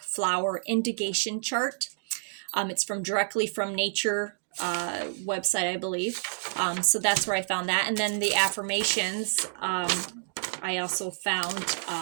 flower indication chart. It's directly from Nature website, I believe. So that's where I found that. And then the affirmations, I also found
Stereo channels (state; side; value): silent; left; digital silence